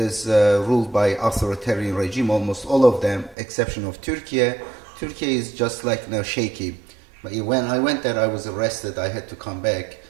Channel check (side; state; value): left; drops out; at 3.4 s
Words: ruled by authoritarian regime. Almost all of them, exception of Turkey. Turkey is just like shaky. But when I went there, I was arrested. I had to come back.